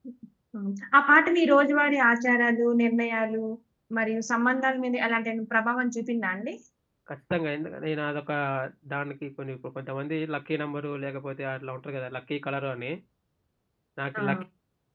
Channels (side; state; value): both; identical; correlation 1.00